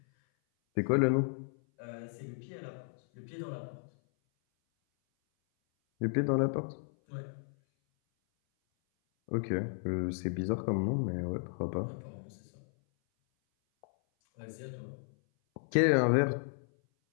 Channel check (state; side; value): silent; right; 55 dB below the other